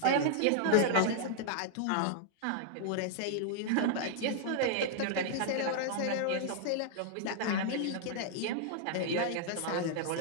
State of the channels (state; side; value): different; both; correlation -0.01